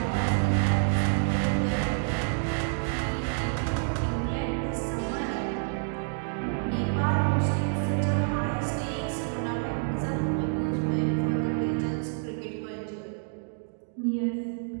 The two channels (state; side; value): silent; left; 59 dB below the other